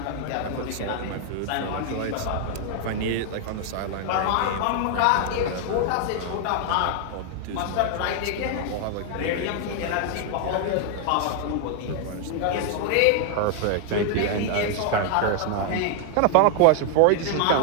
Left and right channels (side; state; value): both; different; correlation 0.00